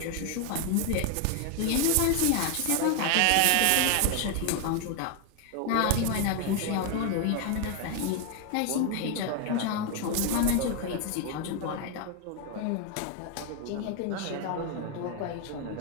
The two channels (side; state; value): both; different; correlation 0.01